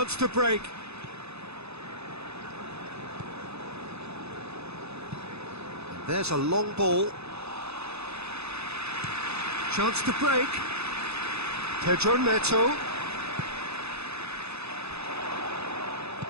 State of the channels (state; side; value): late; left; 0.79 ms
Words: to break. There's a long ball. Chance to break. Pedro Neto.